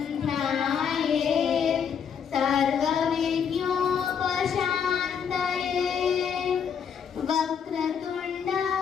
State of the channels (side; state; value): right; quieter; 7.3 dB